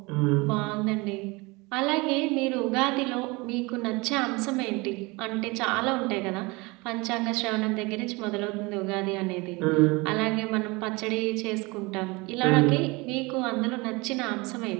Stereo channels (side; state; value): left; quieter; 25.1 dB